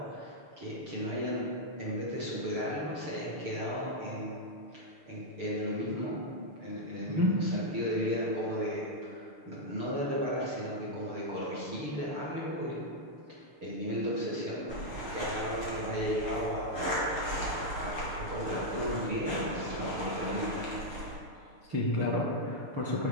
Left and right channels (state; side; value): late; left; 6.7 ms